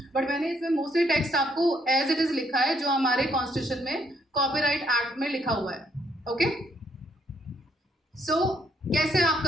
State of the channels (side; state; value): both; normal; correlation 0.71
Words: बट मैंने इसमें मोस्टली टेक्स्ट आपको एज इट इज लिखा है जो हमारे कॉन्स्टिट्यूशन में कॉपीराइट एक्ट में लिखा हुआ है. ओके, सो कैसे आप